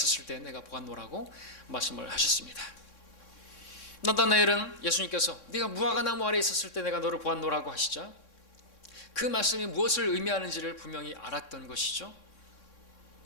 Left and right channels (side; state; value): right; late; 3.6 ms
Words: 때 내가 보았노라고 말씀을 하셨습니다. 나다나엘은 예수님께서 네가 무화과나무 아래 있었을 때 내가 너를 보았노라고 하시자 그 말씀이 무엇을 의미하는지를 분명히 알았던 것이죠.